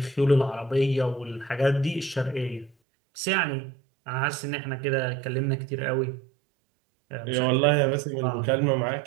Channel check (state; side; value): drops out; left; at 2.8 s